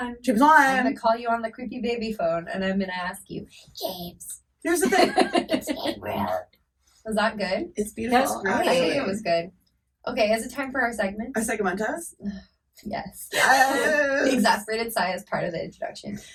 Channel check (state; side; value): identical; both; correlation 1.00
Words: James I'm Wan. gonna call you on the creepy baby phone, and I'm gonna ask you, James. Here's the thing. Was that good? It's beautiful. That was great. I think actually. it was good. Okay, is it time for our segment? Our segmentos? Yes. Yes. The exasperated sigh is part of the introduction.